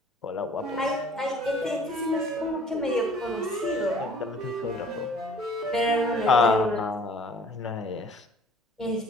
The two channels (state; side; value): normal; both; correlation 0.53